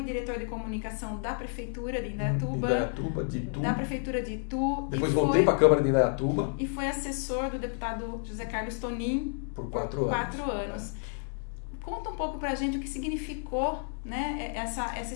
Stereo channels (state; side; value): silent; right; 58 dB below the other